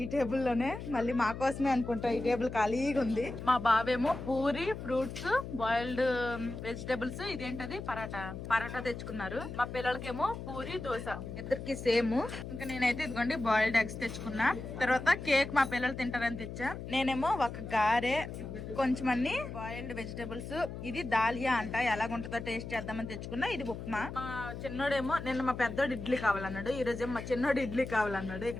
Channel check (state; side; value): noise; left; hum, 8 dB below the sound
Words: టేబుల్ లోనే. మళ్ళీ మా కోసమే అనుకుంటా ఈ టేబుల్ ఖాళీగా ఉంది. మా బావేమో పూరి, ఫ్రూట్స్, బాయిల్డ్ వెజిటబుల్స్, ఇదేంటది పరాటా తెచ్చుకున్నారు. మా పిల్లలకేమో పూరి, దోశ, ఇద్దరికి సేమ్. ఇంకా నేనైతే ఇదిగోండి బాయిల్డ్ ఎగ్స్ తెచ్చుకున్నా. తర్వాత కేక్ మా పిల్లలు తింటారని తెచ్చా. నేనేమో ఒక గారె, కొంచెం అన్ని బాయిల్డ్ వెజిటబుల్స్. ఇది దాలియా అంట, ఎలాగుంటుందో టేస్ట్ చేద్దామని తెచ్చుకున్నా. ఇది ఉప్మా. మా చిన్నోడేమో నిన్న మా పెద్దోడు ఇడ్లీ కావాలన్నాడు, ఈ రోజేమో మా చిన్నోడు ఇడ్లీ కావాలన్నాడు.